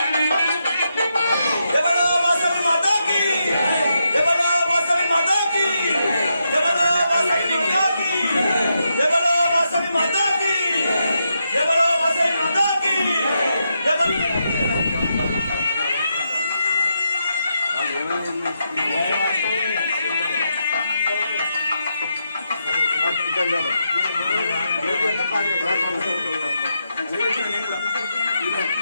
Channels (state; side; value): inverted; both; correlation -0.83